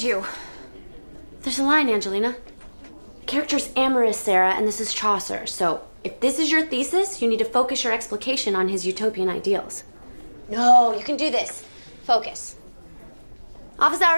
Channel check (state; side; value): inverted; both; correlation -1.00